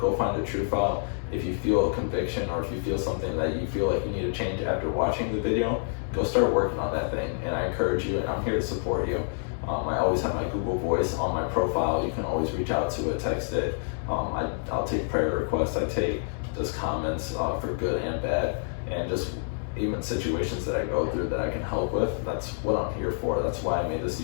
find the truth out. If you feel a conviction, or if you feel something that you feel like you need to change after watching the video, go start working on that thing, and I encourage you, and I'm here to support you. I always have my Google Voice on my profile. You can always reach out to it, text it. I'll take prayer requests. I take just comments for good and bad, and just even situations that I go through that I can help with. That's what I'm here for. That's why I made this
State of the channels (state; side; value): silent; right; digital silence